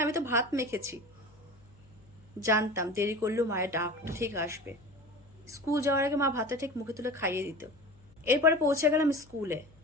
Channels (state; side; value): noise; left; hum, 27 dB below the sound